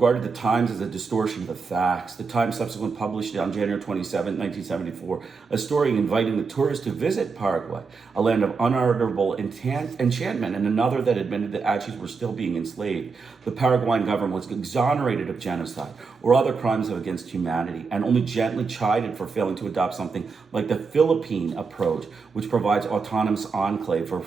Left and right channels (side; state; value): left; quieter; 4.9 dB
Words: the Times as a distortion of the facts. The Times subsequently published on January 27, 1974, a story inviting the tourists to visit Paraguay, a land of unutterable enchantment, and another that admitted that Achis were still being enslaved. The Paraguayan government was exonerated of genocide or other crimes against humanity, and only gently chided for failing to adopt something like the Philippine approach, which provides autonomous enclave for